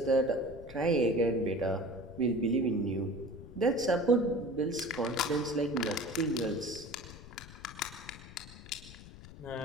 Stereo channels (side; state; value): left; noise; rumble, 16 dB below the sound